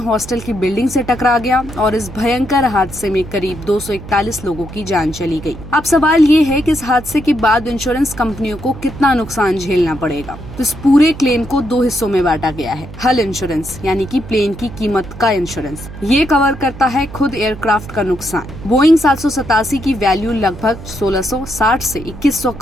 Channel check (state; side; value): noise; right; hum, 14 dB below the sound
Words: की बिल्डिंग से टकरा गया और इस भयंकर हादसे में करीब 241 लोगों की जान चली गई। अब सवाल ये है कि इस हादसे के बाद इंश्योरेंस कंपनियों को कितना नुकसान झेलना पड़ेगा। तो इस पूरे क्लेम को 2 हिस्सों में बांटा गया है। हल इंश्योरेंस यानी कि प्लेन की कीमत का इंश्योरेंस, ये कवर करता है खुद एयरक्राफ्ट का नुकसान। बोइंग 787 की वैल्यू लगभग 1660 से 2100